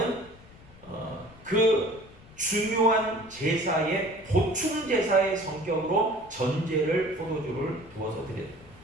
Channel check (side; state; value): left; noise; rumble, 22 dB below the sound